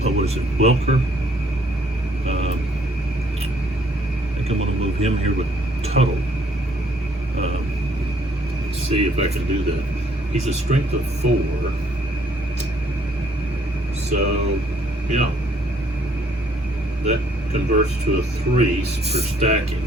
what is it, Welker? I think I'm going to move him here with Tuttle. Let's see if I can do that. He's a strength of 4. So, yeah. That converts to a 3 for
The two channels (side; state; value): both; normal; correlation 0.65